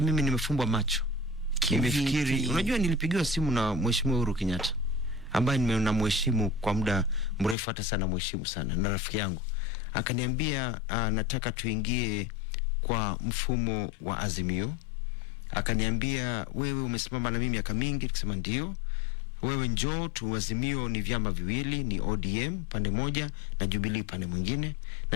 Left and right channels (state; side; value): drops out; right; at 7.6 s